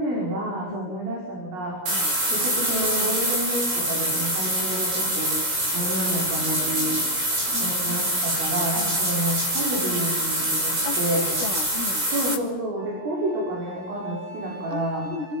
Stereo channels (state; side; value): late; left; 17 ms